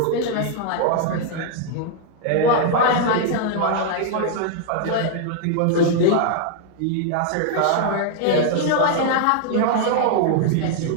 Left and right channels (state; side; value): different; both; correlation 0.00